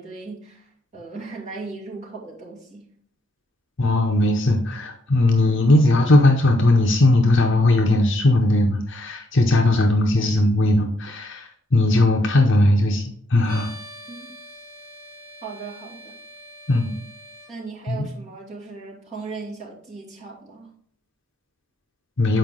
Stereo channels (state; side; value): normal; both; correlation 0.76